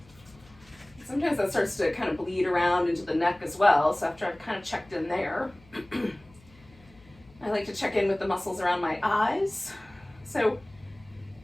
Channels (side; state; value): left; noise; hum, 27 dB below the sound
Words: sometimes that starts to kind of bleed around into the neck as well. So after I've kind of checked in there, I like to check in with the muscles around my eyes. So